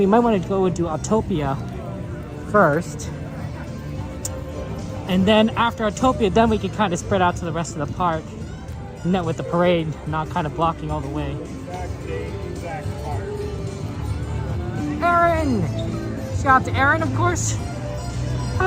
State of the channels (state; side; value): identical; both; correlation 1.00